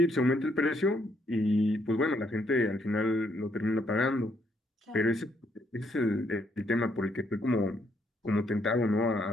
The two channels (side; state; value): both; normal; correlation 0.72